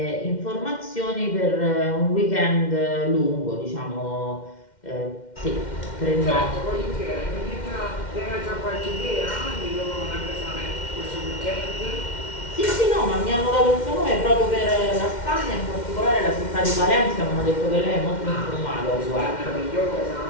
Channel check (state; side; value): late; right; 2.1 ms